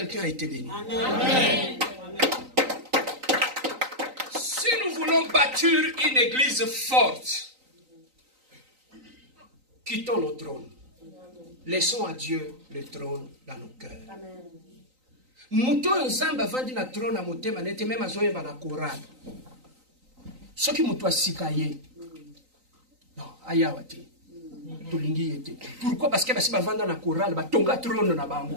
a été béni? Amen. Si nous voulons bâtir une église forte, quittons nos trônes. Laissons à Dieu le trône dans nos cœurs. Muto nzamba vandi na trône à motema nete même azoye ba na Coran. Ce qui muto asikaye. Non, ayawate. Pourquoi? Parce que si tu vas dans la chorale, tu vas trône na bango.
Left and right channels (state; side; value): late; left; 3.9 ms